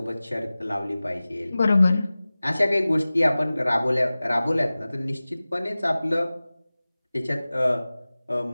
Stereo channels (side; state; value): both; inverted; correlation -0.98